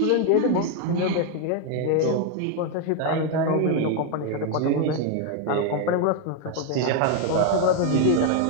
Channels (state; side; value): different; both; correlation 0.01